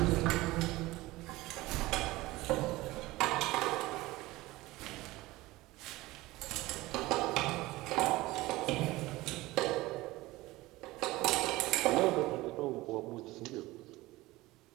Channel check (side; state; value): left; quieter; 19.3 dB